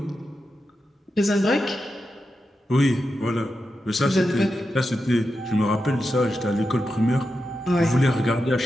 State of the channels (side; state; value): both; normal; correlation 0.89